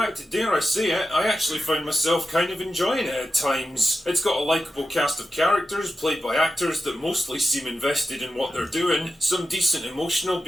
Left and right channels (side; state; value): both; normal; correlation 0.91